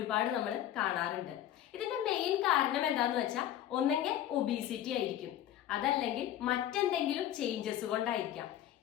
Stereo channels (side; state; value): right; quieter; 11.8 dB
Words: നമ്മൾ കാണാറുണ്ട്. ഇതിന്റെ മെയിൻ കാരണം എന്താന്ന് വെച്ചാൽ ഒന്നെങ്കിൽ ഒബീസിറ്റി ആയിരിക്കും, അതല്ലെങ്കിൽ മറ്റെന്തെങ്കിലും ചേഞ്ചസ് കൊണ്ടായിരിക്കാം.